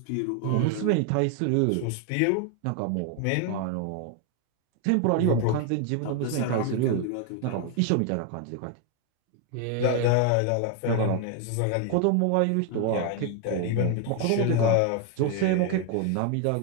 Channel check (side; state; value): both; different; correlation 0.01